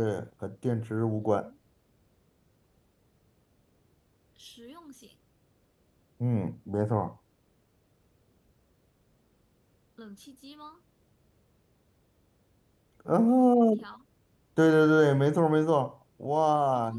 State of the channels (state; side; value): identical; both; correlation 1.00